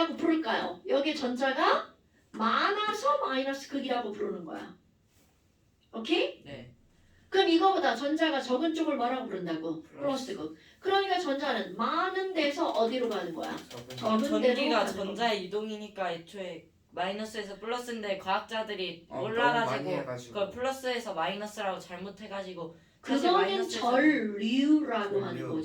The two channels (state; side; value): identical; both; correlation 1.00